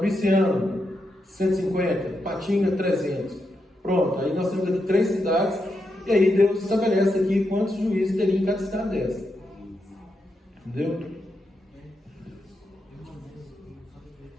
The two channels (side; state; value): both; normal; correlation 0.84